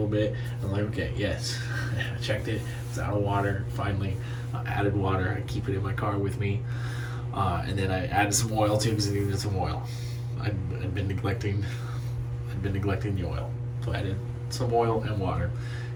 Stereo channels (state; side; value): identical; both; correlation 1.00